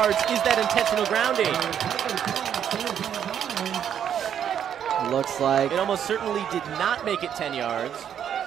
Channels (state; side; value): quieter; left; 9.1 dB